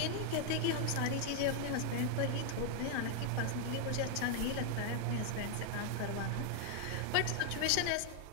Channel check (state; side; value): different; both; correlation 0.00